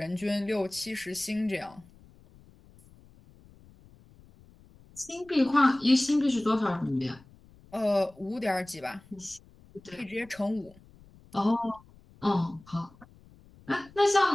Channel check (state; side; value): noise; left; rumble, 25 dB below the sound